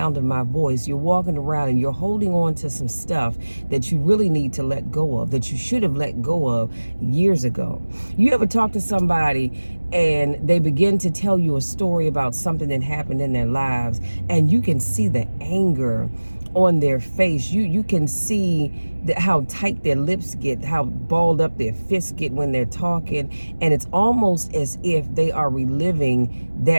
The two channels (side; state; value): both; inverted; correlation -1.00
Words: of my voice, you're walking around and you're holding on to some stuff that you really need to let go of, that you should have let go of years ago. You ever talk to somebody and they begin to tell you a story about something that happened in their lives, and you can see the anger on their face. You can see how tight their lips get, how balled up their fists get when they're talking, and it's almost as if they are reliving